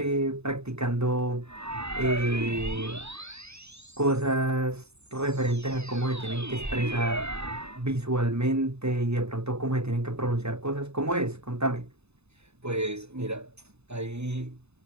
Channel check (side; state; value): left; late; 0.80 ms